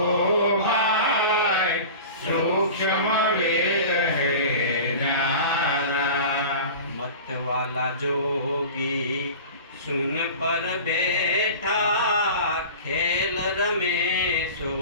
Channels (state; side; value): inverted; both; correlation -0.36